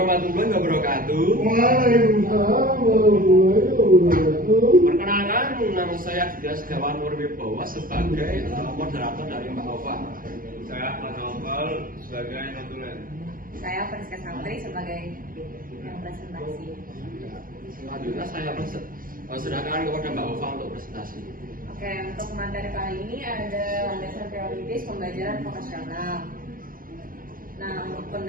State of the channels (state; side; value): late; left; 0.41 ms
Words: wabarakatuh. Waalaikumsalam warahmatullahi wabarakatuh. Perkenalkan, nama saya Dias Setiawan Nurwibowo sebagai moderator dari Mbak Ova. Saya Ahmad Naufal sebagai notulen. Saya Friska Santri sebagai yang presentasi. Selanjutnya saya serahkan kepada Mbak Ova untuk presentasi. Oke, untuk materi kali ini ada landasan teoritis pembelajaran vokasional. Nah, untuk